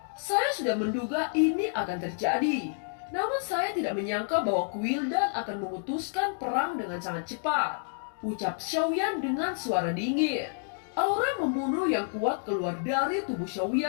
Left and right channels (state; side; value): silent; right; digital silence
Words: "Saya sudah menduga ini akan terjadi. Namun saya tidak menyangka bahwa Quildan akan memutuskan perang dengan sangat cepat," ucap Xiaoyan dengan suara dingin. Aura membunuh yang kuat keluar dari tubuh